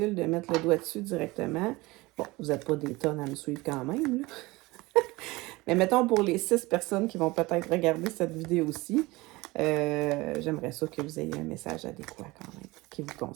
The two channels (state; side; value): quieter; left; 21.7 dB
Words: de mettre le doigt dessus directement. Bon, vous n'êtes pas des tonnes à me suivre quand même, là. Mais mettons pour les 6 personnes qui vont peut-être regarder cette vidéo-ci, j'aimerais ça que vous ayez un message adéquat quand même, qui vous